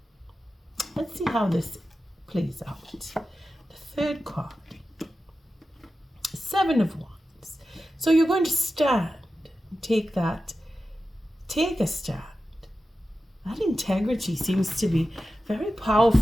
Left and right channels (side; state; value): both; normal; correlation 0.92